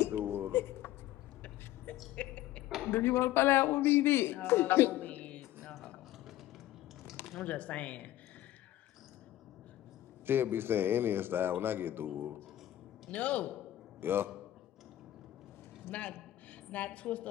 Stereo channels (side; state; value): right; quieter; 14.1 dB